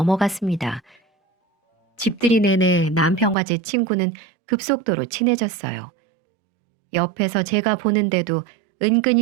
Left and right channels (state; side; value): drops out; left; at 3.4 s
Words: 집들이 내내 남편과 제 친구는 급속도로 친해졌어요. 옆에서 제가 보는데도